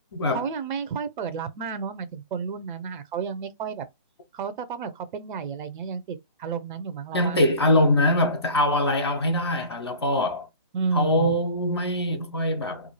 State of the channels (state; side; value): inverted; both; correlation -0.41